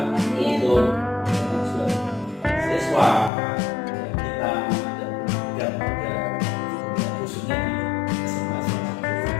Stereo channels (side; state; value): right; drops out; at 3.3 s